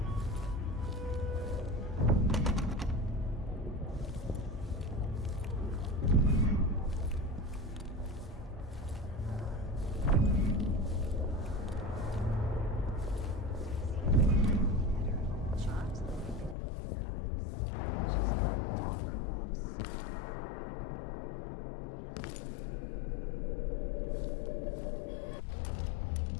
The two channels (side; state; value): right; drops out; at 16.6 s